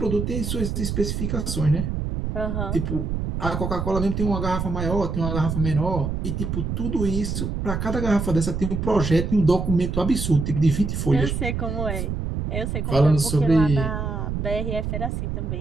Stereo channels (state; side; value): noise; right; rumble, 2 dB below the sound